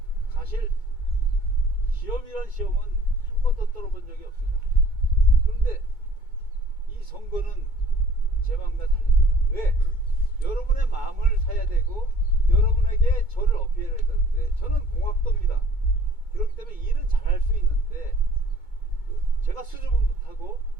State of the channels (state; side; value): late; right; 2.2 ms